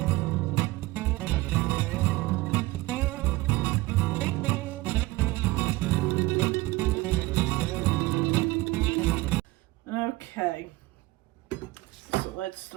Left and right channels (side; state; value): left; quieter; 20.3 dB